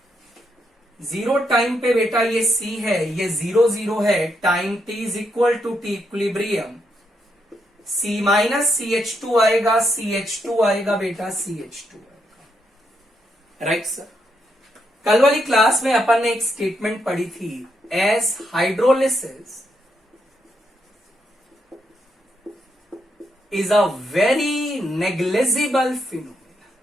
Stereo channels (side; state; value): both; normal; correlation 0.79